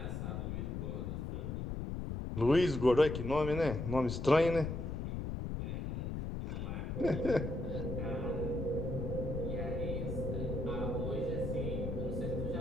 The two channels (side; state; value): left; noise; rumble, 3 dB below the sound